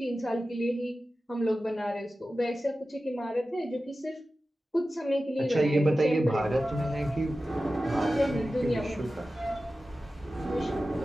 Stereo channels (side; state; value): both; normal; correlation 0.94